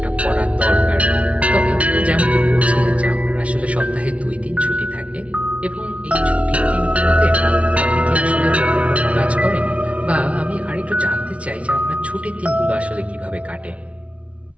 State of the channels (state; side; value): late; left; 0.064 ms